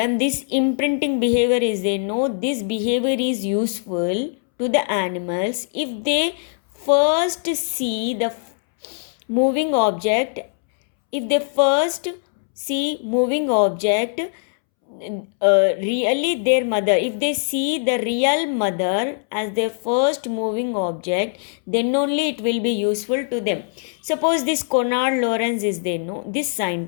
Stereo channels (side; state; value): right; silent; 65 dB below the other